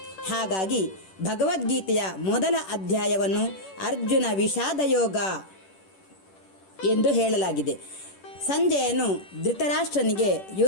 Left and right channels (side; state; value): right; late; 10 ms